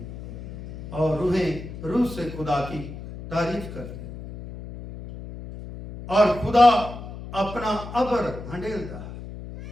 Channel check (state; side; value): noise; left; hum, 11 dB below the sound